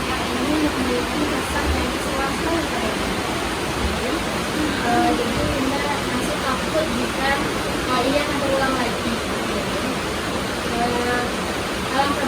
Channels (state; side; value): identical; both; correlation 1.00